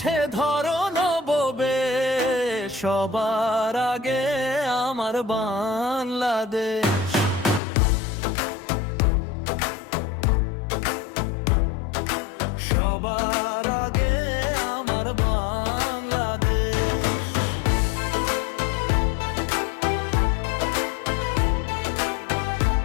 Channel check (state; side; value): drops out; right; at 7.6 s